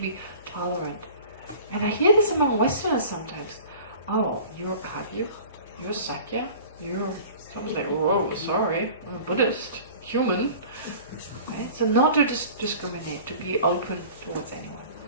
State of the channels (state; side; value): inverted; both; correlation -0.43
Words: be tolerant. And I hear this among Westerners sometimes. Oh, you're Kagyu, you're Sakya, you're... Someone's like, whoa, sorry, I'm a Buddhist, human. Right? So not to discriminate, to be open towards anyone.